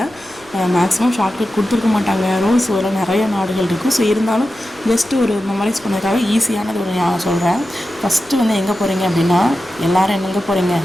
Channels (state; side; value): noise; left; rumble, 29 dB below the sound